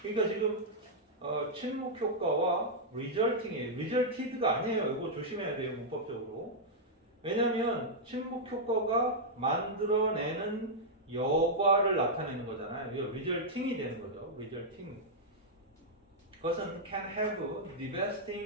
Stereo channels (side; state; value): both; normal; correlation -0.06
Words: 그러니까 지금 침묵 효과와 resulting이에요. resulted가 아니에요. 이거 조심해야 돼요, 문법적으로. 왜냐하면 침묵 효과가 만들어내는 여과를 나타내는 거잖아요. 이거 resulting이 되는 거죠. resulting. 그것은 can have